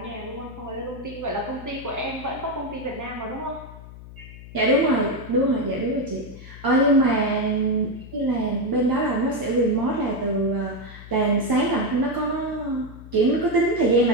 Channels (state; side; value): noise; left; hum, 16 dB below the sound